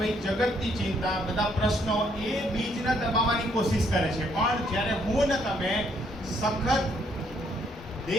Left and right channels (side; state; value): both; normal; correlation 0.69